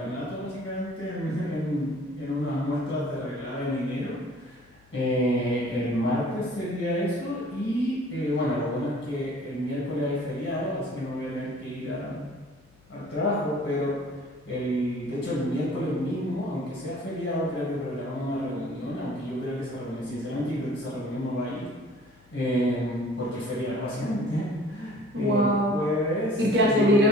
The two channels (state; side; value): noise; left; hum, 29 dB below the sound